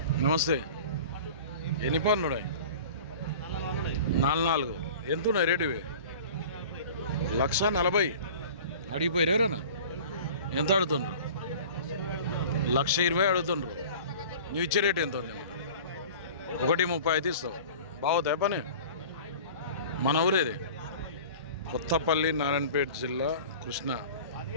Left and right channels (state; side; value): inverted; both; correlation -0.41